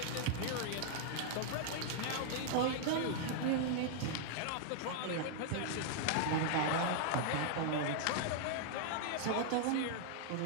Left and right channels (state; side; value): different; both; correlation 0.00